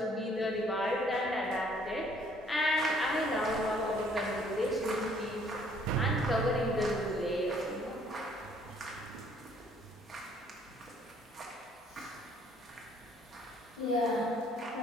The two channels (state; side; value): normal; both; correlation 0.62